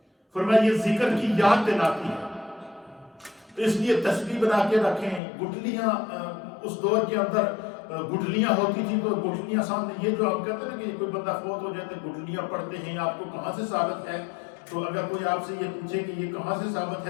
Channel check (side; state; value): right; drops out; at 5.2 s